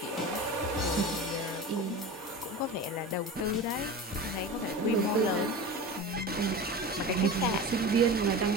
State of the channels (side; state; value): both; normal; correlation 0.30